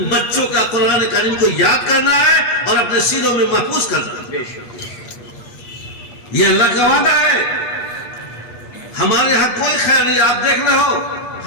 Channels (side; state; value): right; late; 8.5 ms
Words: بچوں کا قرآن کریم کو یاد کرنا ہے اور اپنے سینوں میں محفوظ کرنا ہے۔ یہ اللہ کا وعدہ ہے۔ ہمارے ہاں کوئی خیر نہیں. آپ دیکھ رہے ہو